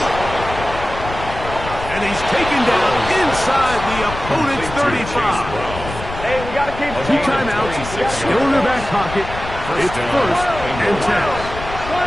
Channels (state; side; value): noise; left; rumble, 10 dB below the sound